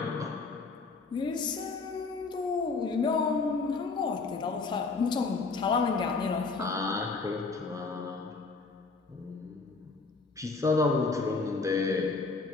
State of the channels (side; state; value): right; quieter; 4.1 dB